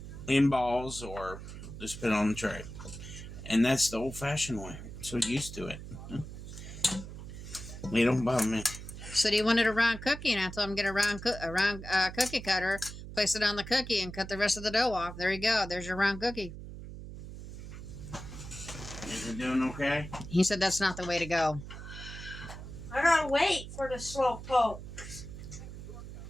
in balls or just put it on the tray. And that's the old-fashioned way. So used to it. They don't bother me. Said he wanted a round cookie, and I told him get a round cookie cutter, place it on the cookie, and cut the rest of the dough off. There you go. There's your round cookie. Is it doing okay? He said that's not the way to go. I gotta wait for the slow poke.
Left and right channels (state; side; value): noise; right; hum, 11 dB below the sound